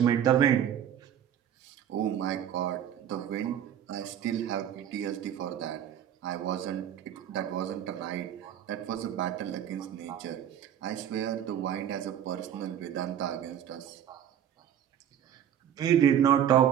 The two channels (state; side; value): quieter; left; 9.8 dB